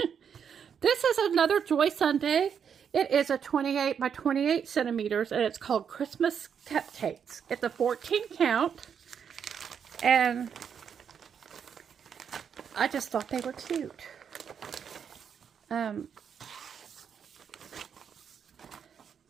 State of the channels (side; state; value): left; quieter; 7.5 dB